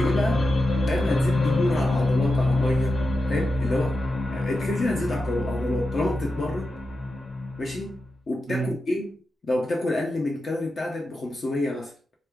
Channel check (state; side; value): normal; both; correlation 0.90